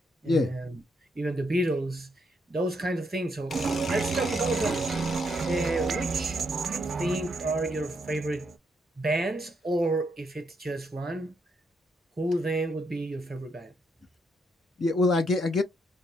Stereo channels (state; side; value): normal; both; correlation 0.77